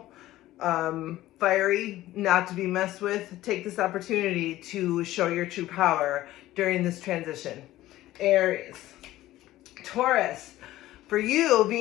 fiery, not to be messed with. Take this opportunity to show your true power during this transition. Aries. Taurus. For you,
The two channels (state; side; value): quieter; right; 15.5 dB